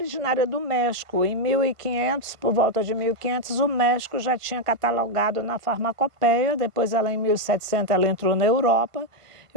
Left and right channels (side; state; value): left; late; 1.5 ms